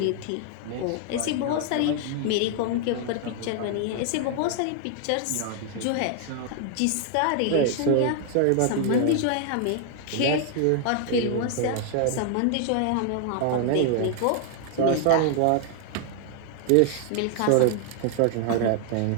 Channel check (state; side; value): different; both; correlation 0.00